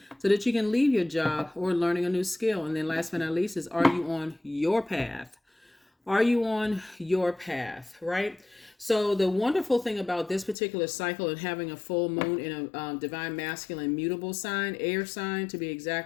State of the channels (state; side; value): drops out; right; at 10.6 s